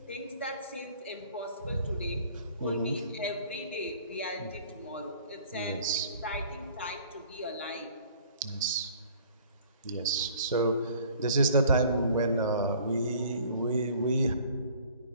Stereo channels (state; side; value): inverted; both; correlation -0.52